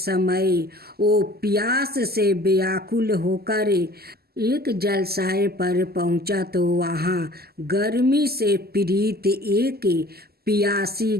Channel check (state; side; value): late; left; 0.46 ms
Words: वो प्यास से व्याकुल होकर एक जलाशय पर पहुंचा, तो वहाँ गर्मी से पीड़ित एक प्यासी